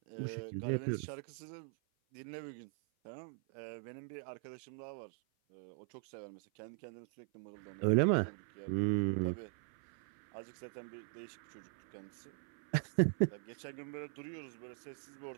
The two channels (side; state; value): left; silent; 51 dB below the other